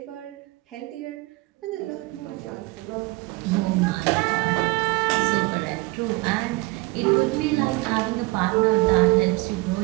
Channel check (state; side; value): quieter; left; 23.4 dB